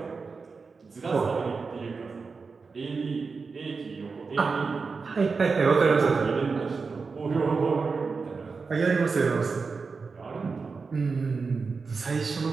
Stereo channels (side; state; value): left; quieter; 4.7 dB